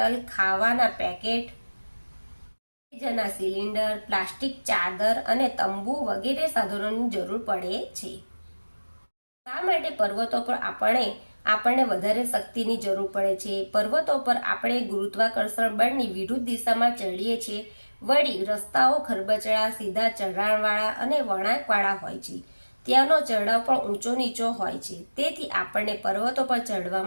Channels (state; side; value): inverted; both; correlation -1.00